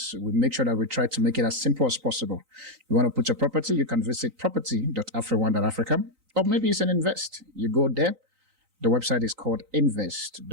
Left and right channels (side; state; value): left; late; 3.9 ms